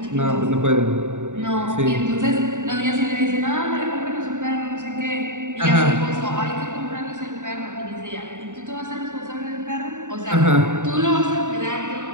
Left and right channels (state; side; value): late; left; 0.86 ms